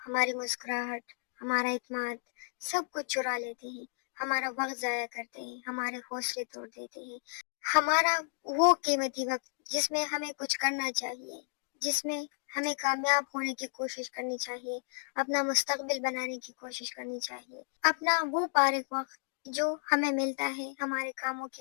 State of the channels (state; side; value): silent; right; 56 dB below the other